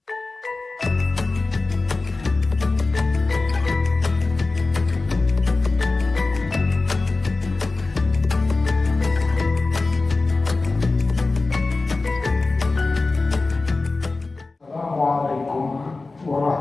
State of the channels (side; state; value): right; quieter; 3.5 dB